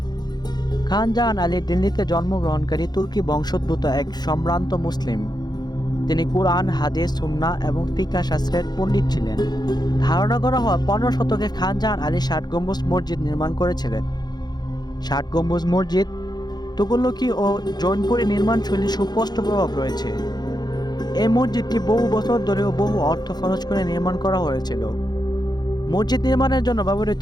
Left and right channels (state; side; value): late; right; 0.20 ms